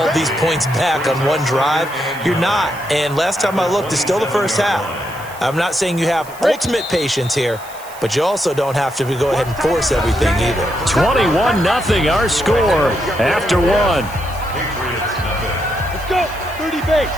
these points back on one drive. You're not. And last time I looked, it's still the first half. I'm not saying you have ultimate patience here, but you also don't have to go ahead and force everything either. 21-0, our score after 1. Let's go. 30 base.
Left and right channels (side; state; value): right; noise; hiss, 19 dB below the sound